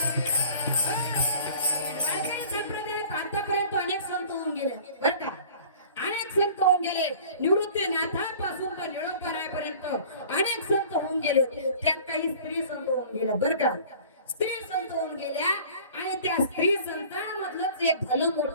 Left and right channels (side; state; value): both; inverted; correlation -0.46